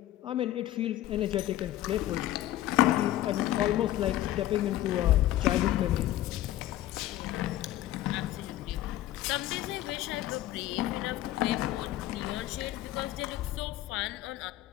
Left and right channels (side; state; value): right; quieter; 14.1 dB